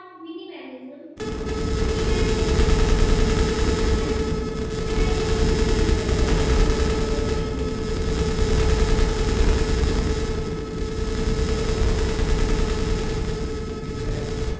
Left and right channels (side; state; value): both; identical; correlation 1.00